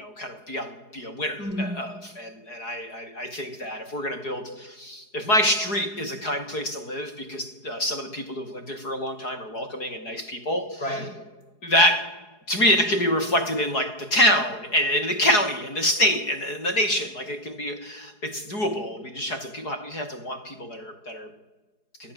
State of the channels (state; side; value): late; right; 4.8 ms